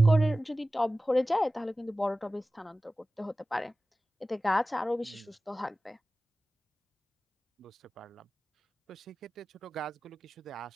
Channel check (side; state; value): both; normal; correlation 0.96